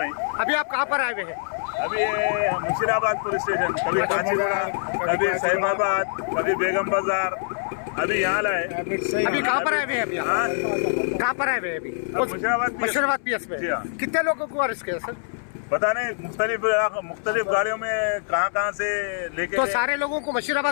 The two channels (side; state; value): right; silent; 62 dB below the other